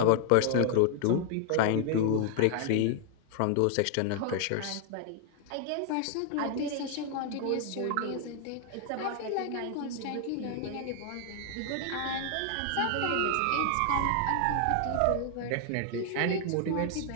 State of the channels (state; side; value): different; both; correlation 0.00